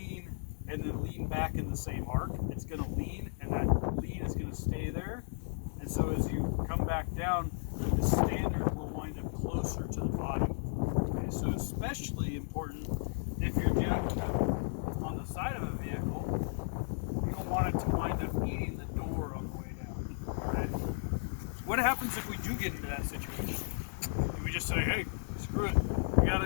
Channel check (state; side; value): silent; right; digital silence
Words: and then lean back in the same arc. It's going to lean, and that lean is going to stay there. And so as you come back down, the standard will wind up closer to the body. Okay, so especially important if you're jacking up on the side of a vehicle, you don't want it to wind up eating the door on the way down. All right? What happens if we do get into that situation? Do we just say, hey, screw it, we got